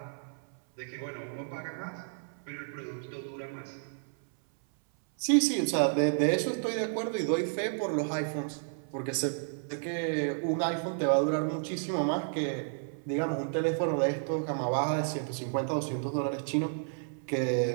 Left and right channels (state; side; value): silent; left; 57 dB below the other